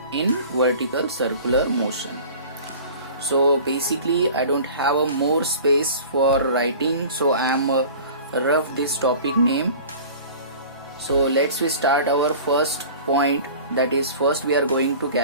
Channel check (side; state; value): both; inverted; correlation -0.42